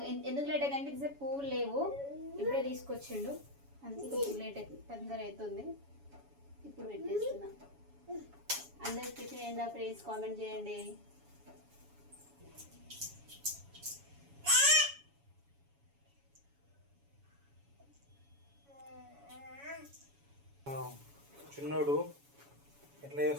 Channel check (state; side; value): late; left; 7.1 ms